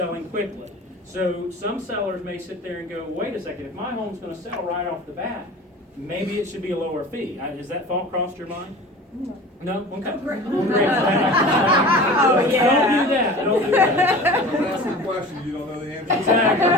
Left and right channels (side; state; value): both; normal; correlation 0.38